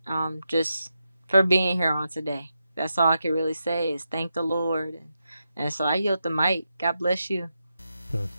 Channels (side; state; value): both; inverted; correlation -0.87